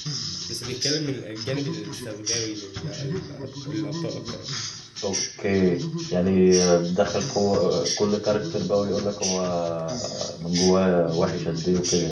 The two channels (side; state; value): both; identical; correlation 1.00